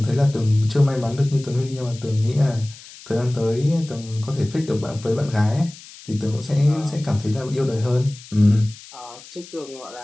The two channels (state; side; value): noise; left; hiss, 19 dB below the sound